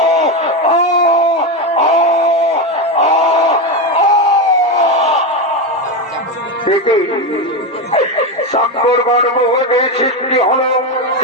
সাক্ষর গর্ভে সৃষ্টি হল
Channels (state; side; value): normal; both; correlation 0.13